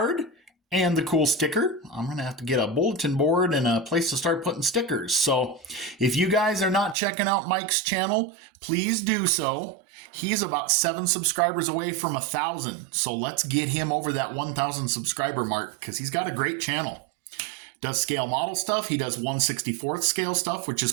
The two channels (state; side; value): drops out; left; at 7.0 s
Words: and the cool sticker. I'm going to have to get a bulletin board and a place to start putting stickers. So if you guys are not checking out Mike's channel, please do so. He's about 7 subscribers away from 1,000. So let's get him over that 1,000 subscriber mark because he's got a great channel. Does scale model stuff. He does 1/64th scale stuff, which is